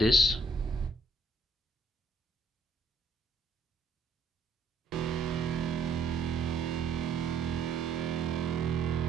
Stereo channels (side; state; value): left; quieter; 3.2 dB